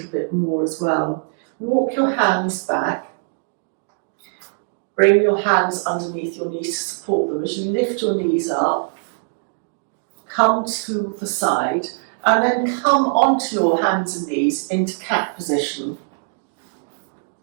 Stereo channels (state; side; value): silent; left; digital silence